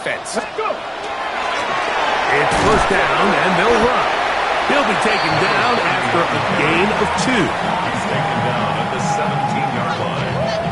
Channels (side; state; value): both; identical; correlation 1.00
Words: It's first down, and they'll run. He'll be taken down after a gain of 2. He's taken down at the 17-yard line.